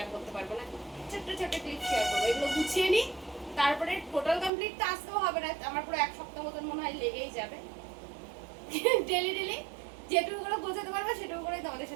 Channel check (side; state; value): left; drops out; at 4.5 s